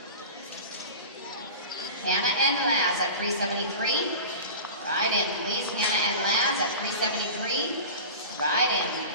Hannah and Laz at 373. Ride in, please. Hannah and Laz at 373. Ride in,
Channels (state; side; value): inverted; both; correlation -0.32